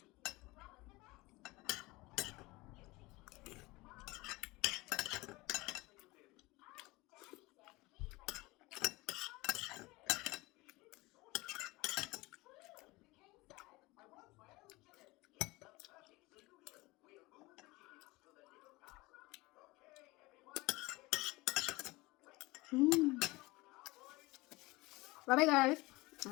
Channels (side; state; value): right; quieter; 22.0 dB